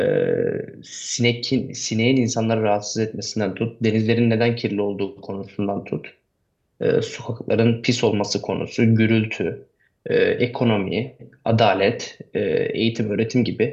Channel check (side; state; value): both; identical; correlation 1.00